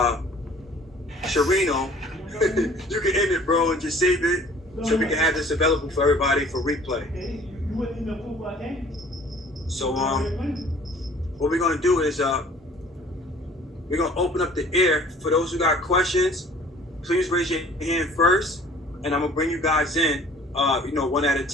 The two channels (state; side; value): normal; both; correlation 0.51